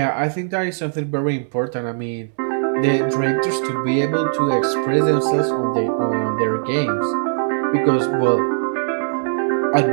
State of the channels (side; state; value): left; silent; digital silence